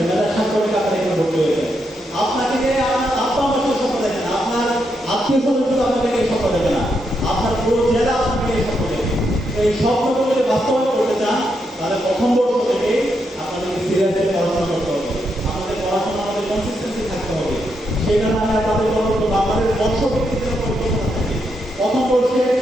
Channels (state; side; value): normal; both; correlation 0.81